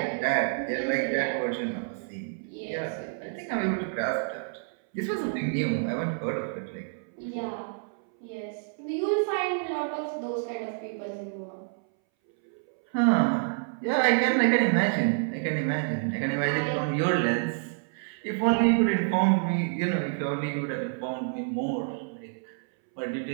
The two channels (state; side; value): silent; left; 59 dB below the other